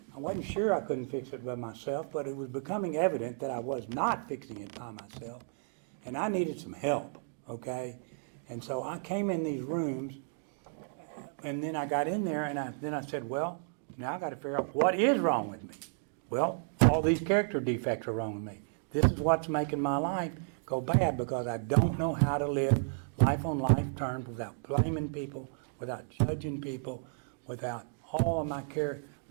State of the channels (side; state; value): left; silent; digital silence